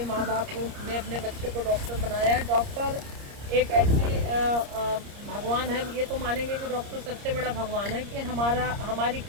माँ बाप ने अपने बच्चे को डॉक्टर बनाया है, डॉक्टर एक ऐसी भगवान है, ये तो मानेंगे कि डॉक्टर सबसे बड़ा भगवान है कि हमारी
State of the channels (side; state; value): left; late; 30 ms